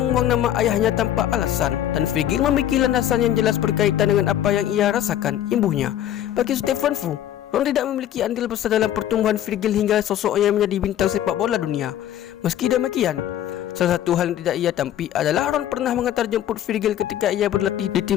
membuang nama ayahnya tanpa alasan, dan Virgil memiliki landasan yang jelas berkaitan dengan apa yang ia rasakan, imbuhnya. Bagi Stefan Fu, Ron tidak memiliki andil besar dalam pertumbuhan Virgil hingga sosoknya menjadi bintang sepak bola dunia. Meski demikian, salah satu hal yang tidak ia tampi adalah Ron pernah mengantar jemput Virgil ketika ia berlatih di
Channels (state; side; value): quieter; right; 11.4 dB